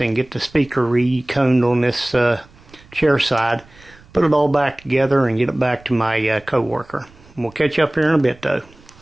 and get the speaker reconed on this Chairside. put it all back together and get it back to my co-worker. We'll catch up here in a bit though.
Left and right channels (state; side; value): noise; right; rumble, 26 dB below the sound